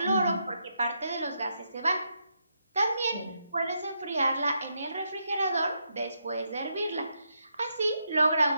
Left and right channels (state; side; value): inverted; both; correlation -0.81